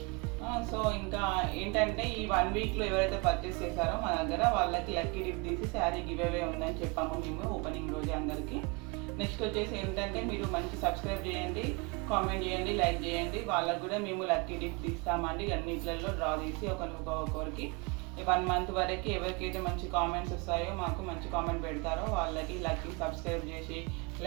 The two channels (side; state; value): left; quieter; 29.5 dB